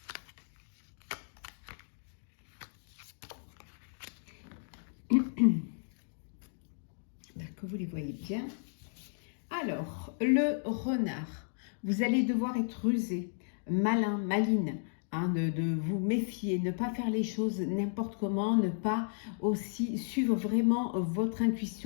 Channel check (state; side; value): silent; right; digital silence